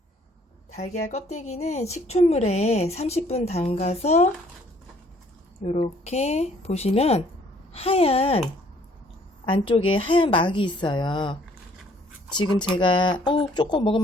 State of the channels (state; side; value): normal; both; correlation 0.61